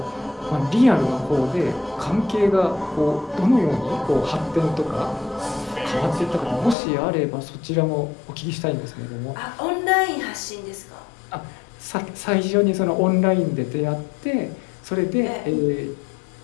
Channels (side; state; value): right; drops out; at 6.8 s